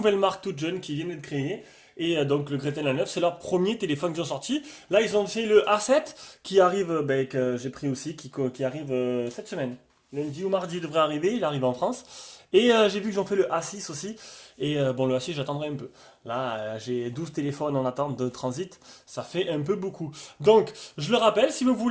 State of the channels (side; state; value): both; identical; correlation 1.00